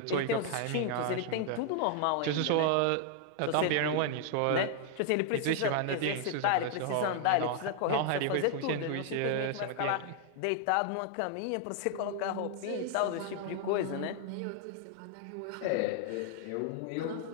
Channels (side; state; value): both; different; correlation 0.00